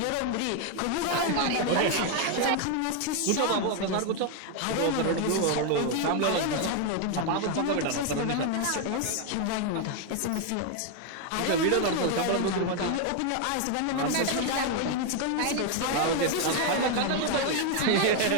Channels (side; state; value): both; different; correlation 0.01